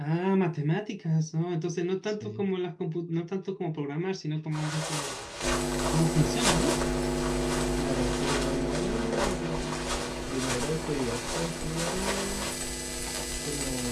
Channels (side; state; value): both; identical; correlation 1.00